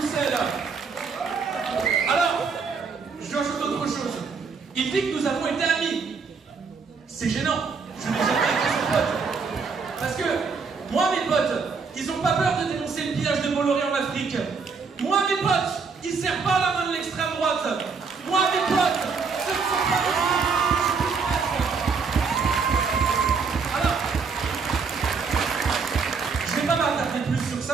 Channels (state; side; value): quieter; left; 5.1 dB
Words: Alors, j'ajoute autre chose. Il dit que nous avons été amis. C'est gênant. Je n'ai jamais été son pote. Parce que, moi, mes potes, ils n'ont pas peur de dénoncer le pillage de Bolloré en Afrique. Moi, mes potes, ils ne serrent pas la main de l'extrême droite. Moi, mes potes, ce ne sont pas des Alors, je ne vais pas m'attarder plus sur